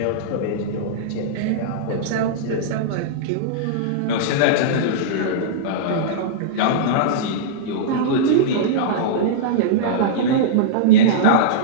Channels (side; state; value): both; different; correlation -0.03